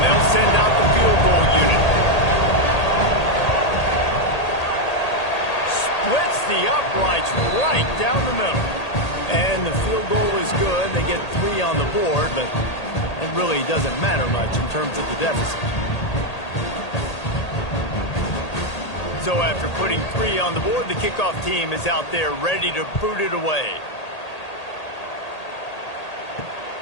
they'll send out the field goal unit. Splits the uprights right down the middle. And the field goal is good. They get 3 on the board, but it really doesn't matter much in terms of the deficit. So after putting 3 on the board, the kickoff team is out there ready to boot it away.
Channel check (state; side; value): late; right; 1.8 ms